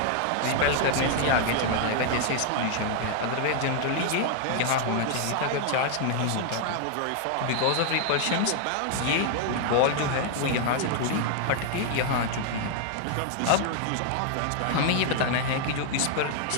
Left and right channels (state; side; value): different; both; correlation 0.00